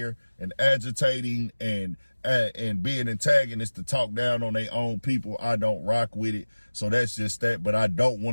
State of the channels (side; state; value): both; inverted; correlation -1.00